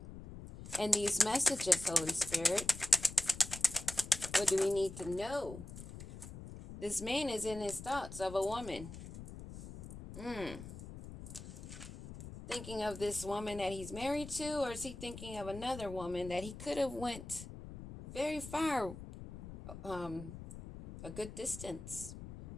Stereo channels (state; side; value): noise; left; rumble, 12 dB below the sound